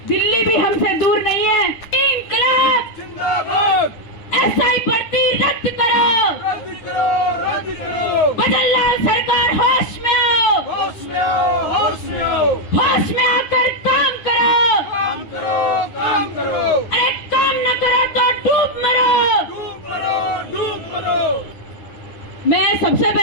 दिल्ली भी हमसे दूर नहीं है। इंकलाब जिंदाबाद, एसआई भर्ती रद्द करो, रद्द करो, रद्द करो। बदललाल सरकार होश में आओ, होश में आओ, होश में आओ। होश में आकर काम करो, काम करो, काम करो। अरे काम न करो तो डूब मरो, डूब मरो, डूब मरो। मैं सबसे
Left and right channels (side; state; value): right; late; 9.6 ms